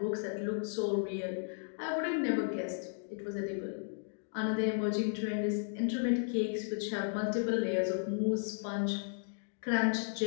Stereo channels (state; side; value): silent; right; digital silence